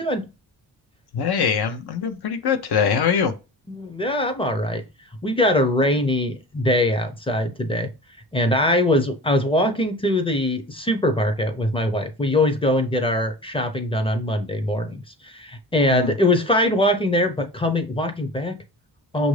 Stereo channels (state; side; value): normal; both; correlation 0.35